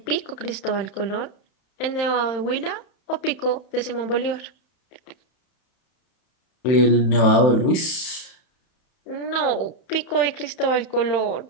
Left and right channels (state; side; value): late; right; 31 ms